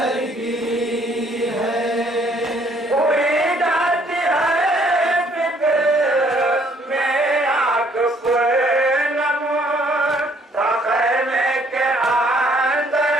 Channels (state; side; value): normal; both; correlation 0.64